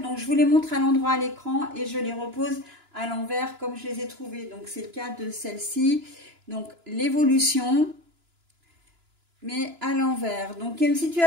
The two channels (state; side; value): late; left; 2.9 ms